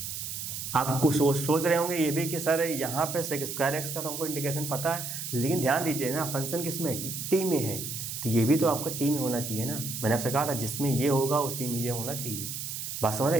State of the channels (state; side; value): noise; right; hiss, 6 dB below the sound